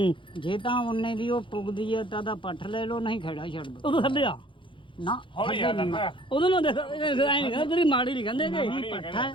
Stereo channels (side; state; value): right; late; 0.24 ms